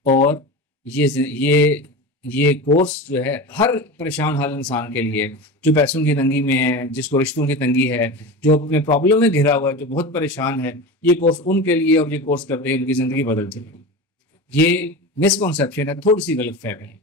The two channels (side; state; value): both; normal; correlation 0.28